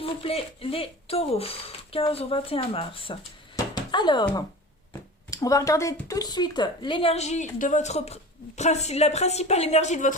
vous plaît, les taureaux. 15 au 21 mars. Alors, on va regarder tout de suite l'énergie de votre... la principale énergie de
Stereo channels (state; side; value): normal; both; correlation 0.35